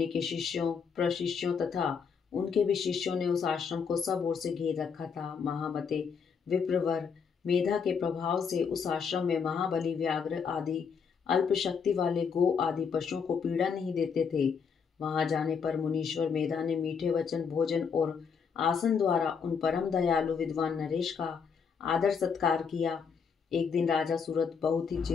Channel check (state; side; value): quieter; right; 6.2 dB